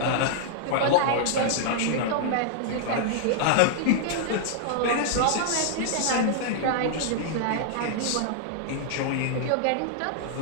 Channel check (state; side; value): different; both; correlation -0.01